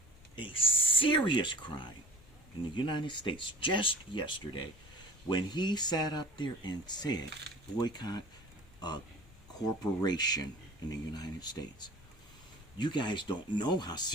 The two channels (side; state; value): both; normal; correlation 0.43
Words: a serious crime in the United States just yesterday when he sat up there and said, boycott a corporation in the United States. You guys don't know how